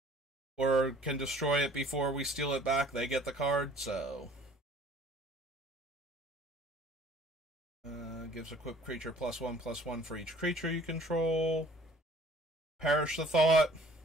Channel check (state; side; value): normal; both; correlation 0.53